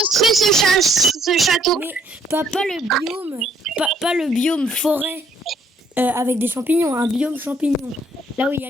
ce château. Mais pas le biome, pas le biome forêt avec des champignons, un biome champignon. Là où il y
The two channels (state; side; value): normal; both; correlation 0.66